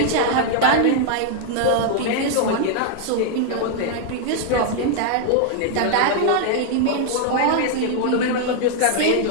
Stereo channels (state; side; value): different; both; correlation 0.00